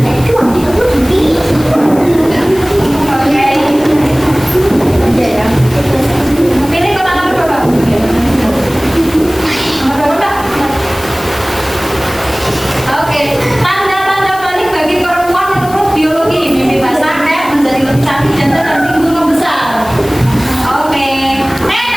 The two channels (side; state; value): left; noise; hiss, 17 dB below the sound